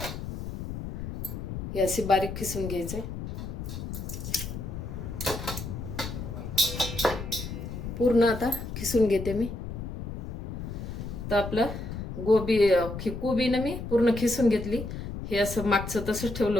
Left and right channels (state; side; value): noise; left; rumble, 7 dB below the sound